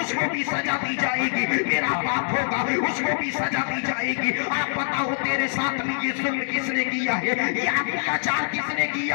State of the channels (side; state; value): right; silent; 62 dB below the other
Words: उसको भी सजा दी जाएगी, मेरा बाप होगा उसको भी सजा दी जाएगी। आप बताओ तेरे साथ में ये जुल्म किसने किया है, ये अत्याचार किसने